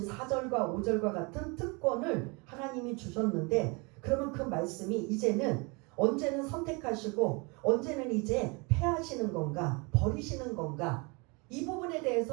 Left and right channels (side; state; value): left; quieter; 29.3 dB